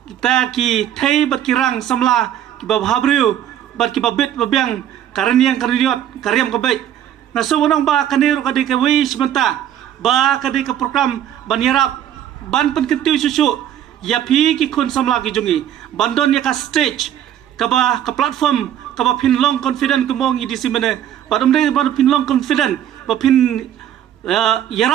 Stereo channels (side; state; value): left; quieter; 10.7 dB